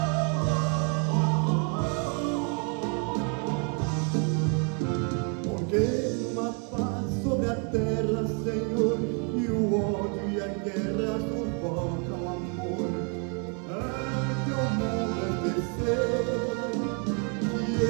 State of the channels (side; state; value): left; quieter; 38.5 dB